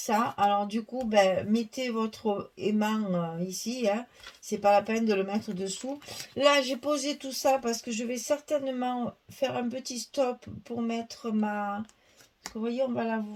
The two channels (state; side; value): identical; both; correlation 1.00